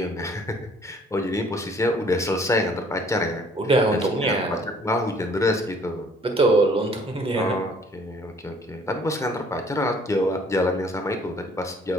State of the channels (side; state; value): both; normal; correlation 0.58